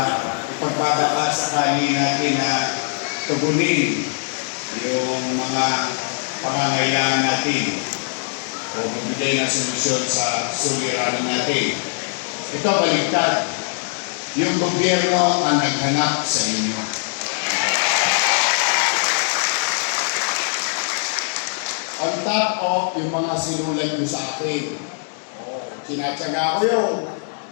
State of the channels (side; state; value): right; silent; digital silence